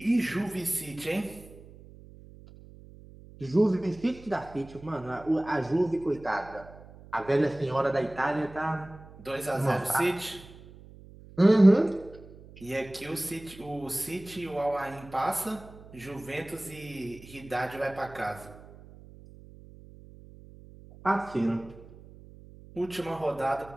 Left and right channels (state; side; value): noise; right; hum, 20 dB below the sound